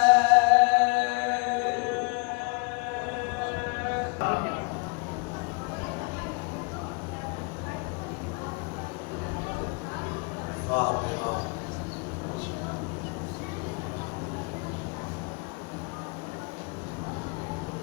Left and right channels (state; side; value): quieter; right; 30.6 dB